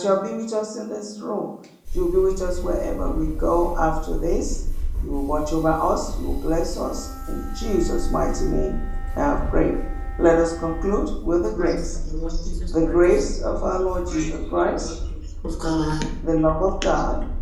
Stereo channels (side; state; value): both; identical; correlation 1.00